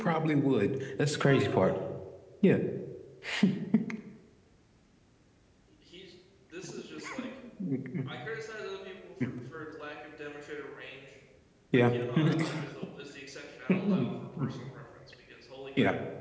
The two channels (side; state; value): both; identical; correlation 1.00